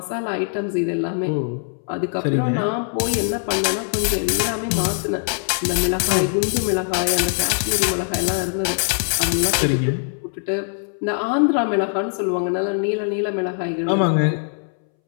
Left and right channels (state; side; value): silent; right; 63 dB below the other